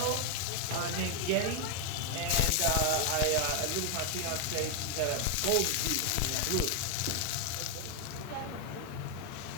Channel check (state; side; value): different; both; correlation 0.01